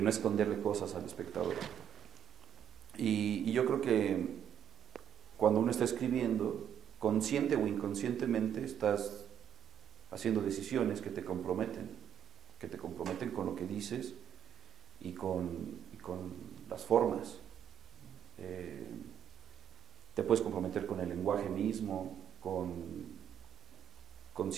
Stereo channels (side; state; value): left; quieter; 9.3 dB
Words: no esconderle cosas al espectador. Y yo creo que cuando uno está escribiendo, consciente o inconscientemente, estás haciendo decisiones que te comprometen con lo que dices y con las formas. Te puedes comprometer con el lenguaje mismo, con